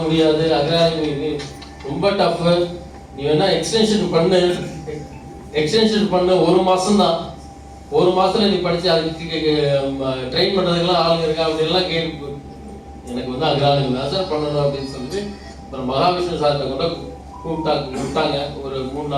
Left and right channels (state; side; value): identical; both; correlation 1.00